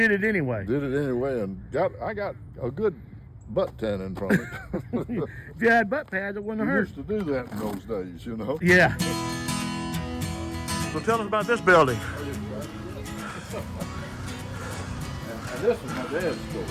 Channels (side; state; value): both; identical; correlation 1.00